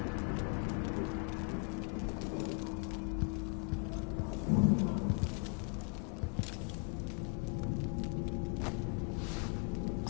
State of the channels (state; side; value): quieter; right; 37.6 dB